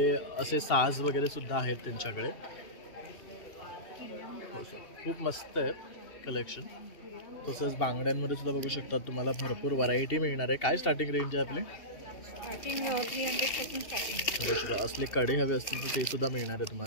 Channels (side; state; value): right; late; 2.7 ms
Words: असे साज वगैरे सुद्धा आहेत त्यांच्याकडे. खूप मस्त आहे कलेक्शन. तसंच बांगड्यांमध्ये सुद्धा बघू शकतात तुम्हाला भरपूर व्हरायटी मिळणार आहे. काय स्टार्टिंग रेंज आहे आपली? असले कडे हवे असतील तर ते सुद्धा मिळणार आहे